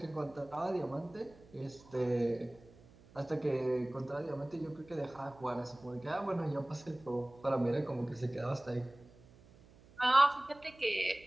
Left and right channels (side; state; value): right; noise; hum, 24 dB below the sound